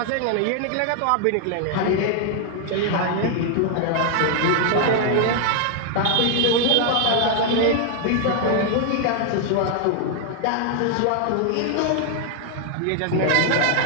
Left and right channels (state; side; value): different; both; correlation 0.00